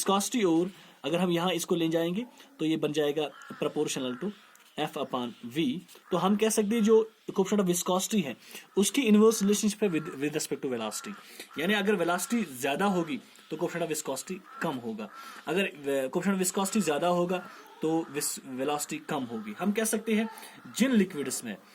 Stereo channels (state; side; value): identical; both; correlation 1.00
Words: और अगर हम यहाँ इसको ले जाएंगे तो ये बन जाएगा प्रोपोर्शनल टू F/V। तो हम कह सकते हैं जो कोएफिशिएंट ऑफ विस्कोसिटी है उसकी इनवर्स रिलेशनशिप है विद रिस्पेक्ट टू वेलोसिटी। यानी अगर वेलोसिटी ज्यादा होगी तो कोएफिशिएंट ऑफ विस्कोसिटी कम होगा, अगर कोएफिशिएंट ऑफ विस्कोसिटी ज्यादा होगा तो वेलोसिटी कम होगी। हम कह सकते हैं जिन लिक्विड्स में,